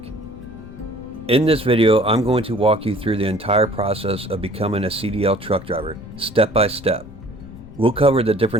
In this video, I'm going to walk you through the entire process of becoming a CDL truck driver, step by step. We'll cover the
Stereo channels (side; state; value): left; noise; rumble, 17 dB below the sound